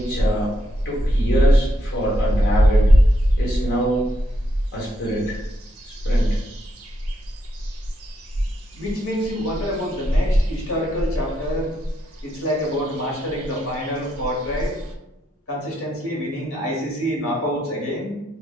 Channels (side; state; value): both; normal; correlation 0.78